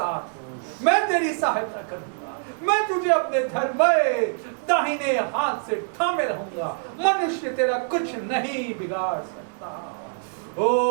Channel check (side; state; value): left; silent; digital silence